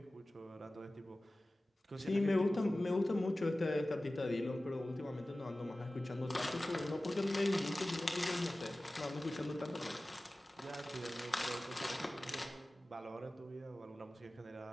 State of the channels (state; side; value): normal; both; correlation 0.97